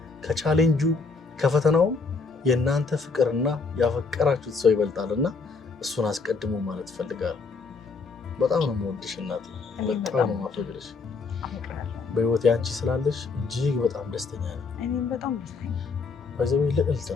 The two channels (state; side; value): quieter; right; 4.4 dB